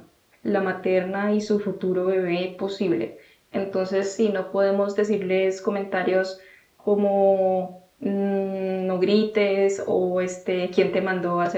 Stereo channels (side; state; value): both; identical; correlation 1.00